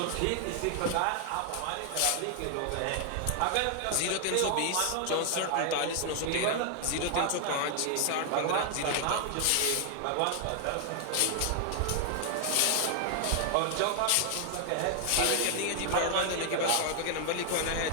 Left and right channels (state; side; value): different; both; correlation 0.00